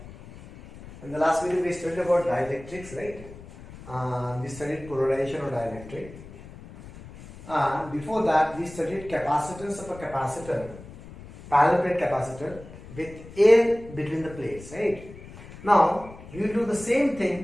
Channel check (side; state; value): left; noise; rumble, 17 dB below the sound